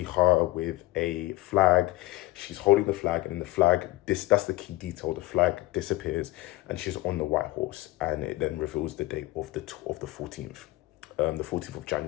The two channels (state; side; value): quieter; right; 18.6 dB